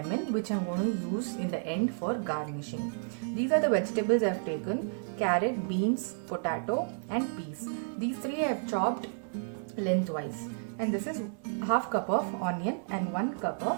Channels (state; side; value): silent; left; 57 dB below the other